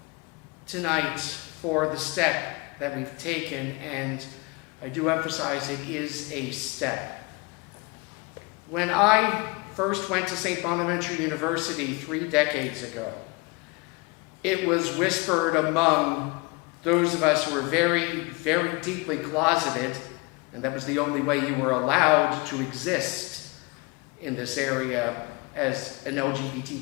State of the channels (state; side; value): quieter; right; 26.9 dB